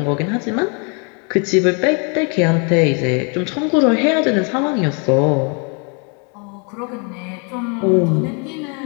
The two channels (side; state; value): right; quieter; 36.1 dB